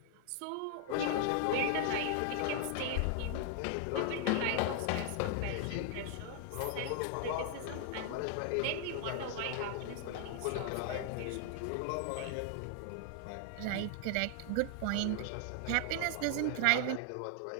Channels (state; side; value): different; both; correlation 0.00